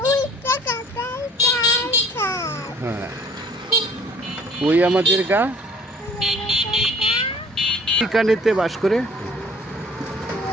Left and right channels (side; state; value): both; normal; correlation 0.55